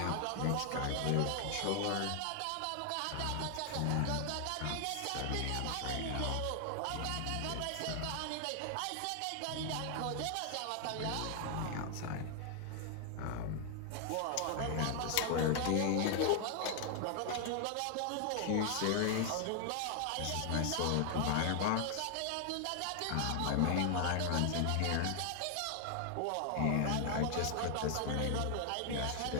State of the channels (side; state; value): both; different; correlation 0.00